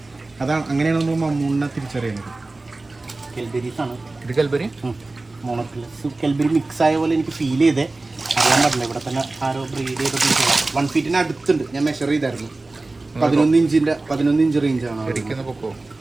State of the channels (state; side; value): quieter; left; 3.2 dB